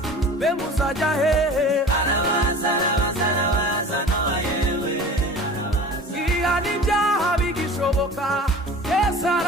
be muzajya hehe arabaza arabaza arabaza Nowa yewe ihana ibyaha bigishoboka Yesu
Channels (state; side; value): normal; both; correlation 0.40